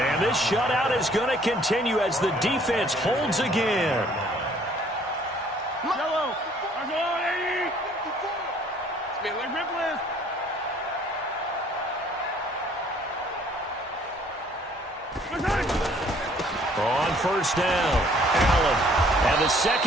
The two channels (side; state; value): both; normal; correlation 0.59